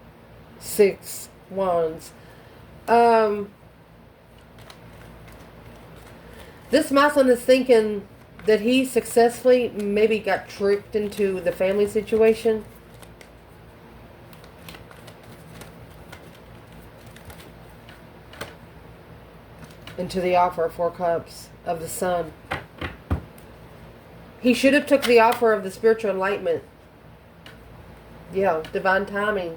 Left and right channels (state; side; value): identical; both; correlation 1.00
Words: 6 Wands. This masculine is thinking that he successfully maybe got tricked into the family situation. Into the offer of 4 Cups of the Sun. He should have took the offer of the spiritual enlightenment. Yeah, divine timing.